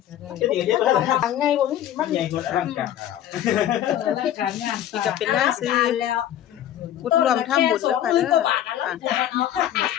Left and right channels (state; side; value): quieter; right; 11.6 dB